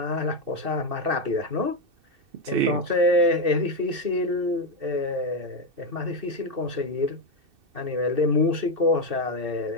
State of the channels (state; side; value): late; left; 2.6 ms